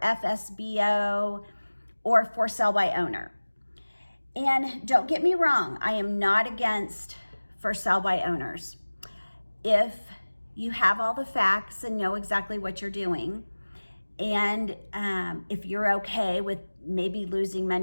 or for sale by owner. And don't get me wrong, I am not against for sale by owners. If you have all the facts and know exactly what you're doing, and if you're okay with maybe losing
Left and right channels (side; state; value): both; inverted; correlation -1.00